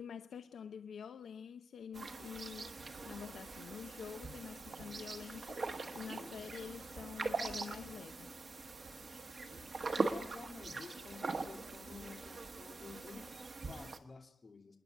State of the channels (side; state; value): both; normal; correlation 0.89